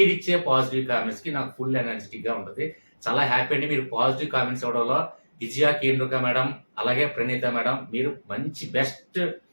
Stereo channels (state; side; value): inverted; both; correlation -1.00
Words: పాజిటివ్ కామెంట్స్ కి నాకు ఫుల్ ఎనర్జెటిక్ గా ఉంటుంది. చాలా హ్యాపీ అండి. మీరు పాజిటివ్ కామెంట్స్ ఇవ్వడంలో విజయ కేంద్రుక మేడం అలాగే ప్రణీత మేడం మీరు మంచి బెస్ట్